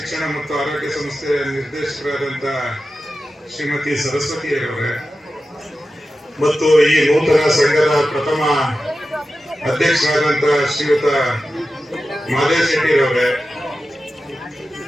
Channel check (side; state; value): both; normal; correlation 0.93